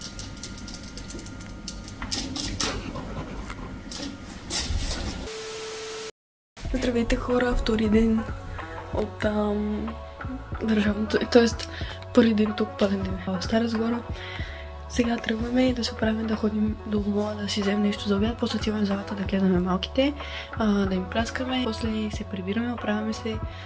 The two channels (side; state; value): both; identical; correlation 1.00